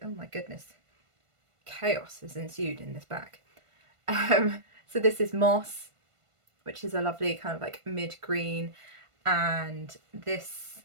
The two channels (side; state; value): left; late; 1.5 ms